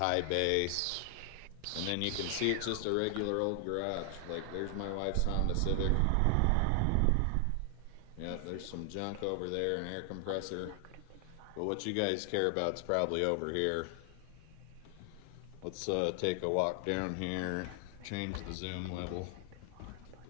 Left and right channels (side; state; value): both; different; correlation 0.00